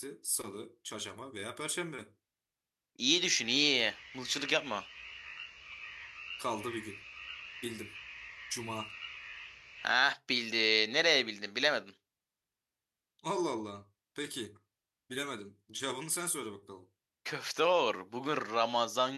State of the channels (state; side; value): identical; both; correlation 1.00